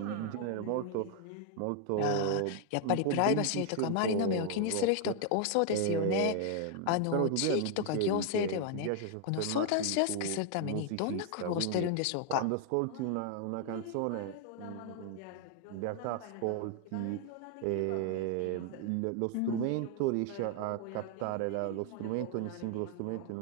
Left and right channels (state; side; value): different; both; correlation 0.00